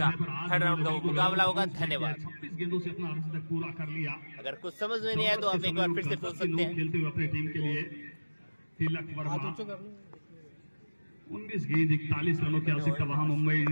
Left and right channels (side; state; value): both; inverted; correlation -1.00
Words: थर्ड राउंड का वो मुकाबला होगा। धन्यवाद। 26 गेंदों से अपना अर्ध तक पूरा कर लिया। अगर कुछ समझ में नहीं आया तो आप एक बार फिर से पूछ सकते हैं। खेलते हुए अपनी टीम के लिए तिलक हाथ वर्मा ऊंचा कर लो। 19 गेंद 41 रनों की आवश्यकता वहां मुंबई